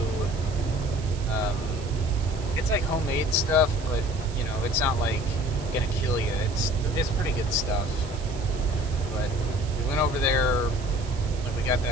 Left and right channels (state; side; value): noise; right; hiss, 17 dB below the sound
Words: it's like homemade stuff, but you know, it's not like gonna kill you. It's pretty good stuff. But we went over there, like we got